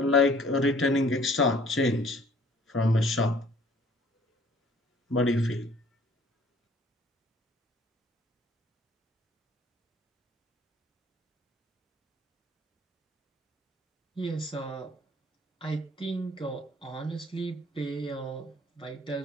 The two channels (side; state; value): both; normal; correlation 0.56